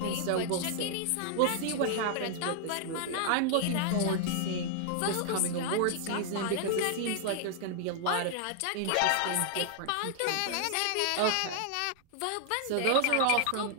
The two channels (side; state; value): both; different; correlation 0.00